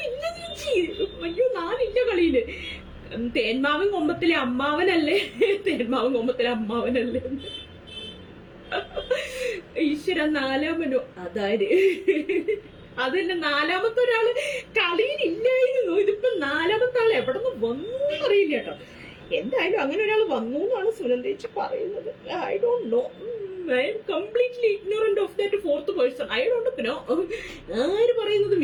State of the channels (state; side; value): identical; both; correlation 1.00